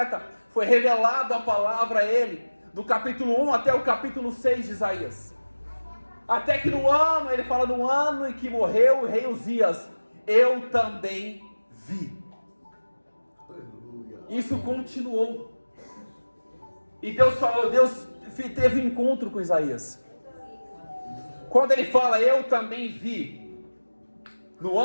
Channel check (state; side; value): inverted; both; correlation -1.00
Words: foi revelado a palavra a ele, do capítulo 1 até o capítulo 6 de Isaías. Até que no ano, ele fala no ano em que morreu o rei Uzias, eu também vi. Isso continuou. E Deus teve um encontro com Isaías. Quando ele fala, eu também vi, no